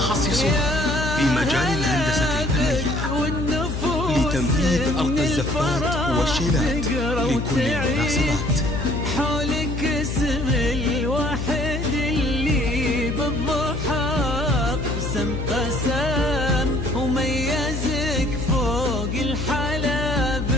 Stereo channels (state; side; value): noise; left; hum, 3 dB below the sound